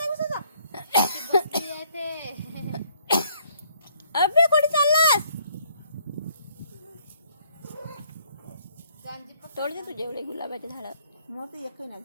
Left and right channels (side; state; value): both; inverted; correlation -0.66